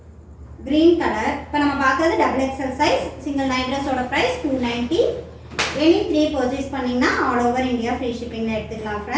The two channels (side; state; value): both; identical; correlation 1.00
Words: Green colour. இப்போ நம்ம பார்க்கறது double XL size single night ட்ரெஸ்ஸோட ப்ரைஸ் 290. எனி 3 பர்ச்சேஸ் பண்ணிங்கன்னா ஆல் ஓவர் இந்தியா ஃப்ரீ ஷிப்பிங்கில் எடுத்துக்கலாம்